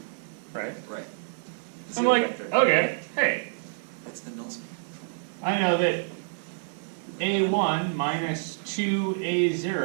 right? Right. I'm Zero like, vector. okay, hey, It's the null space. I know that a1 minus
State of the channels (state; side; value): silent; left; 57 dB below the other